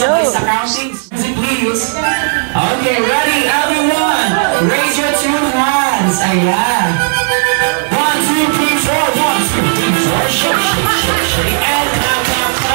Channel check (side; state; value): left; silent; digital silence